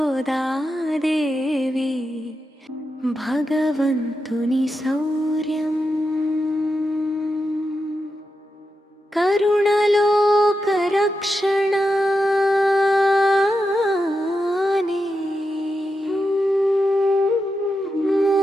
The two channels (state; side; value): normal; both; correlation 0.88